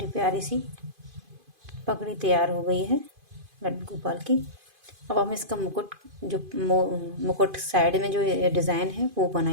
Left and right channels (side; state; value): left; late; 2.5 ms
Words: प्यारी सी पगड़ी तैयार हो गई है लड्डू गोपाल की। अब हम इसका मुकुट, जो मुकुट साइड में जो डिज़ाइन है वो